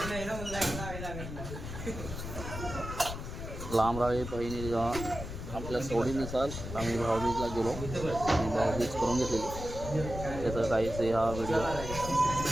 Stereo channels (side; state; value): left; noise; rumble, 8 dB below the sound